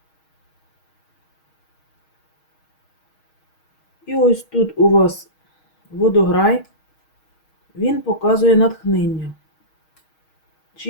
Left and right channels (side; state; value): right; late; 6.4 ms